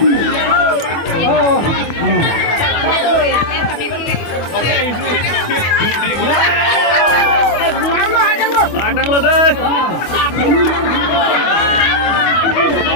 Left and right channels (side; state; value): right; late; 25 ms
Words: oh Adang lu deh.